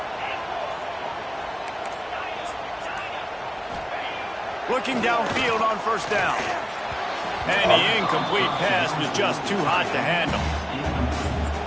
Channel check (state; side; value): identical; both; correlation 1.00